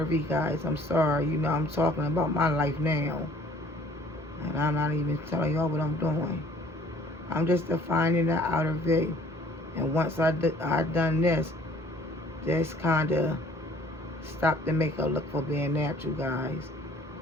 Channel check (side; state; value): both; normal; correlation 0.56